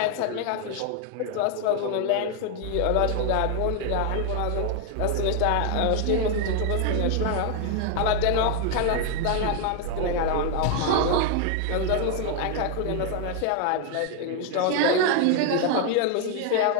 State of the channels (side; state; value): both; different; correlation 0.00